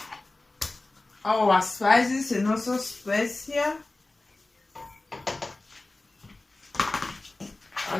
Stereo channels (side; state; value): right; quieter; 3.0 dB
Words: our spices and also specia,